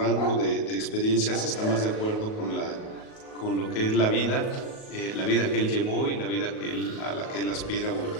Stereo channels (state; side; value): late; right; 37 ms